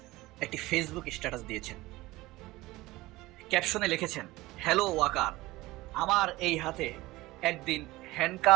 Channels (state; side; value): quieter; left; 19.1 dB